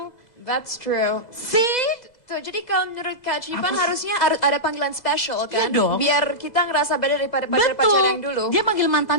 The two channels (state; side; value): late; right; 2.0 ms